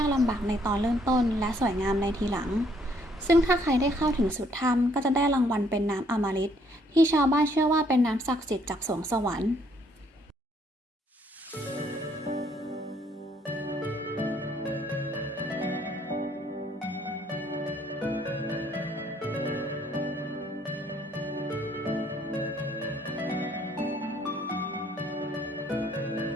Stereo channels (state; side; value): normal; both; correlation 0.66